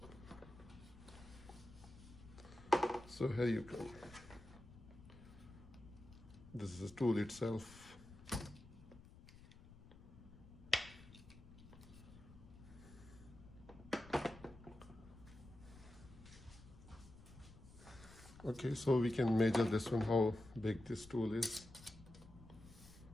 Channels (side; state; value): left; noise; rumble, 18 dB below the sound